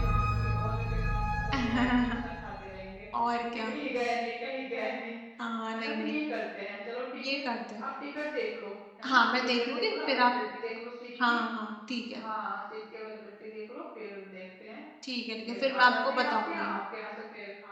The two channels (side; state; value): both; identical; correlation 1.00